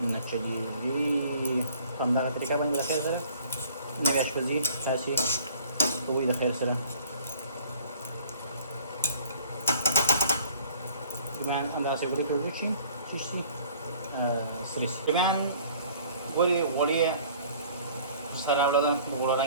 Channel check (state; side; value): inverted; both; correlation -0.53